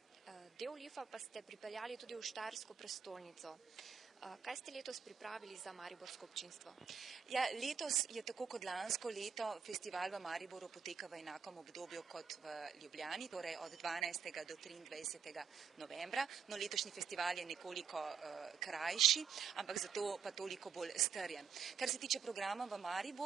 del LIF-a pa ste pripeljali tudi v Štajersko prestolnico. Kaj ste letos pripravili za mariborsko občinstvo? Ja, letos je tako kot lansko leto festival v Mariboru poteka v enakem obdobju kot v Ljubljani, torej od 12. do 23. novembra. No, letošnji festival je nekoliko krajši, ampak zato pa toliko bolj strjen. Kar se tiče programa v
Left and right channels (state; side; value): quieter; left; 6.7 dB